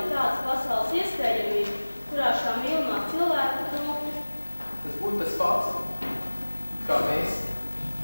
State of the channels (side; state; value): both; inverted; correlation -1.00